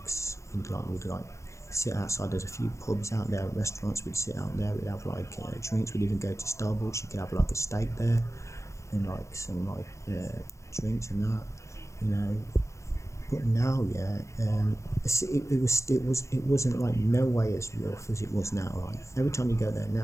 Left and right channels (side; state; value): right; late; 0.14 ms